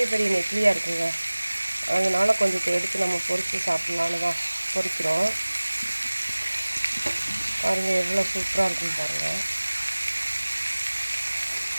பெரிய நெத்திலியாக இருக்குங்க. அதனால் கொஞ்சம் எடுத்து நம்ம பொரித்து சாப்பிட்லான்னு தான் பொரிக்கிறோம். பாருங்கள் எவ்வளோ சூப்பராக இருக்குன்னு பாருங்கள்.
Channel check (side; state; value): both; inverted; correlation -1.00